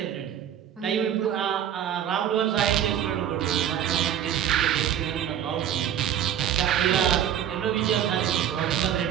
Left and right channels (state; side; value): quieter; left; 10.0 dB